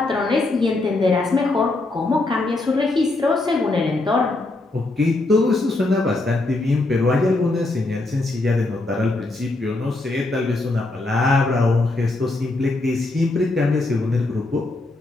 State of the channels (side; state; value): right; quieter; 3.0 dB